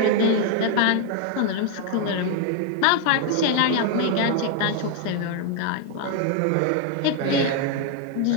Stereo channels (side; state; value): both; different; correlation 0.00